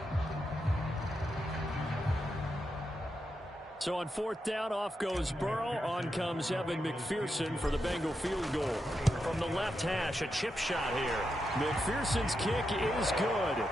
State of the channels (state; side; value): normal; both; correlation 0.86